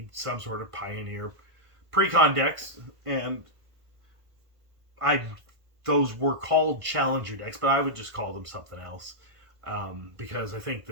some sort of Pioneer Precon decks, and those were called Challenger decks, but I would just call them something else, because I think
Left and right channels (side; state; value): left; late; 1.5 ms